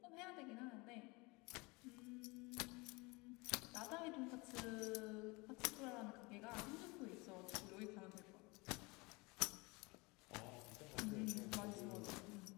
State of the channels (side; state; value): right; quieter; 25.9 dB